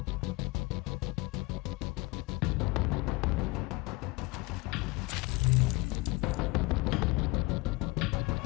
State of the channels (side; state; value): right; quieter; 23.5 dB